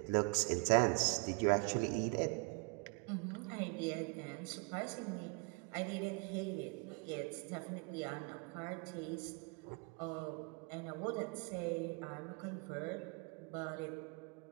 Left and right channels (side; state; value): left; quieter; 33.1 dB